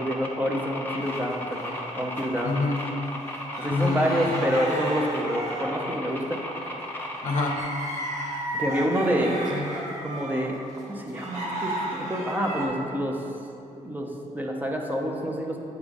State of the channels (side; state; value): both; normal; correlation 0.67